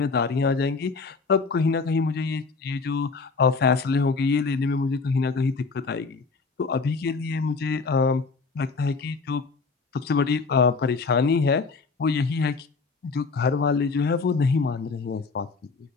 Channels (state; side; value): quieter; right; 4.4 dB